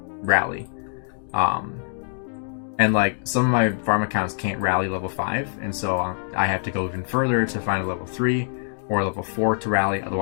rally. And like some of my farm accounts can't rally level 5, and so I have to go even further to find a level 3 or level 4 to rally,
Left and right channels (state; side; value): silent; right; digital silence